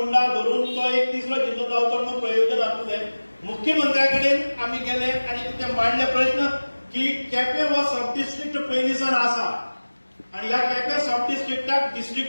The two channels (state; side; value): inverted; both; correlation -1.00